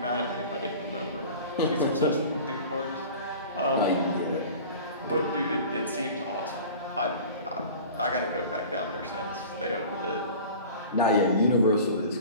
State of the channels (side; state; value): both; inverted; correlation -0.40